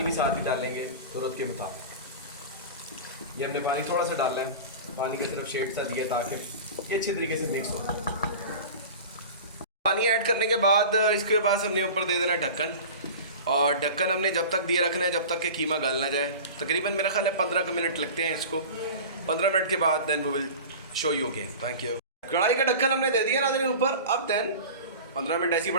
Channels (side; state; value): both; inverted; correlation -0.34